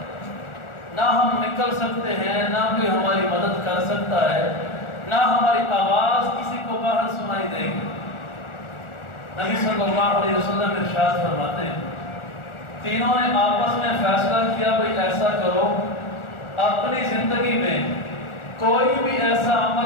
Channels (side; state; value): right; late; 1.4 ms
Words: نہ ہم نکل سکتے ہیں، نہ کوئی ہماری مدد کر سکتا ہے، نہ ہماری آواز کسی کو باہر سنائی دے گی۔ نبی صلی اللہ علیہ وسلم ارشاد فرماتے ہیں، تینوں نے آپس میں فیصلہ کیا بھئی ایسا کرو، اپنی زندگی میں کوئی بھی ایسا